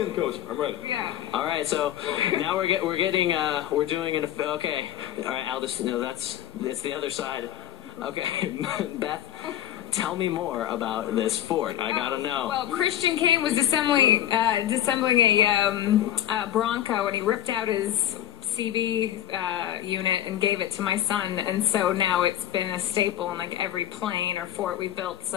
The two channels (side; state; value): right; quieter; 11.8 dB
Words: in, coach. I'm ready. Yeah. All right, so now we're doing okay. All right, Aldis, it's the other side. Okay, Beth, tell me more about this fort. I gotta know. Well, Christian Kane was disassembling a Bronco, and he ripped out his CB unit and gave it to my son, and so now it's been a staple in like every plane or fort we built.